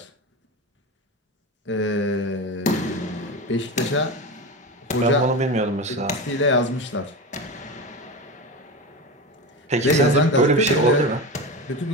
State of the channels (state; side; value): normal; both; correlation 0.24